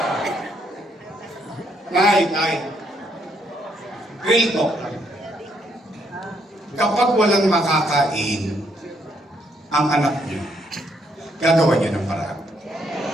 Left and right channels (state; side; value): normal; both; correlation 0.73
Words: Nay, Tay, real talk lang. Kapag walang makakain ang anak niyo, gagawa niya ng paraan.